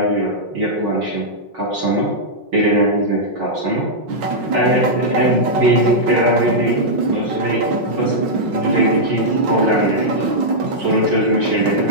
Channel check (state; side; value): late; left; 5.5 ms